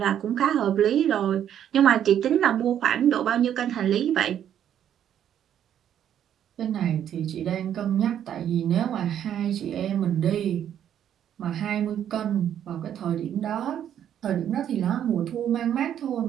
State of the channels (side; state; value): left; quieter; 10.0 dB